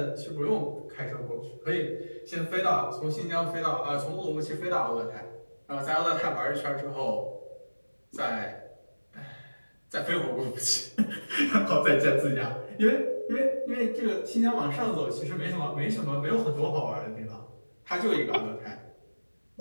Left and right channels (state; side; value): inverted; both; correlation -1.00